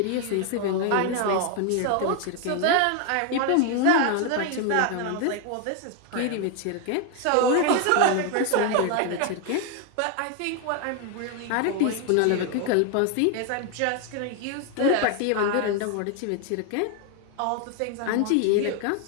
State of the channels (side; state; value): both; different; correlation 0.01